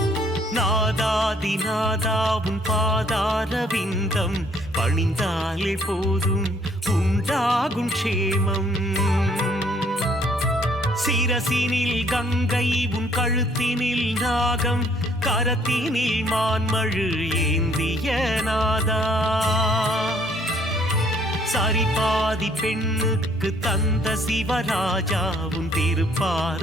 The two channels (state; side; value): normal; both; correlation 0.63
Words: நாதாதி நாதா உன் பாதார விந்தம் பணிந்தாலே போதும் உண்டாகும் க்ஷேமம். சிரசினில் கங்கை உன் கழுத்தினில் நாகம் கரத்தினில் மான்மழு ஏந்திய நாதா. சரிபாதி பெண்ணுக்கு தந்த சிவராஜா உன்